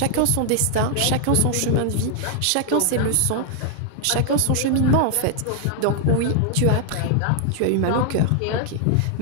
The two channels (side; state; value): both; different; correlation 0.00